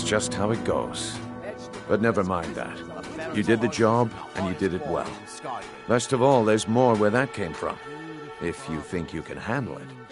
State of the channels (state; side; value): identical; both; correlation 1.00